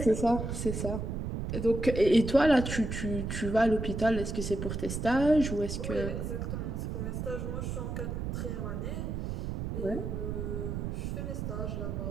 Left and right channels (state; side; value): noise; right; rumble, 3 dB below the sound